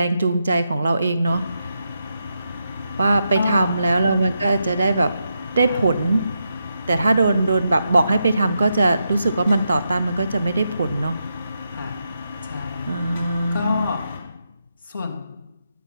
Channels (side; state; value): both; inverted; correlation -0.84